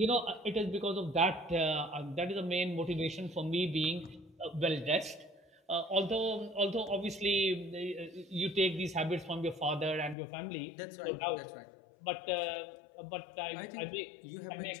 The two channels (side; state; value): right; drops out; at 10.2 s